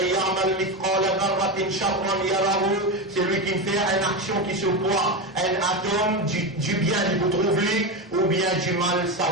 يعمل مثقال ذرة شرا يره. Celui qui fait une action qui se voit, un atome du bien il peut trouver ou bien du mal ça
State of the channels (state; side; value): normal; both; correlation 0.16